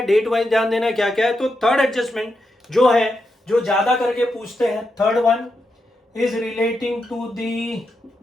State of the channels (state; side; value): normal; both; correlation 0.85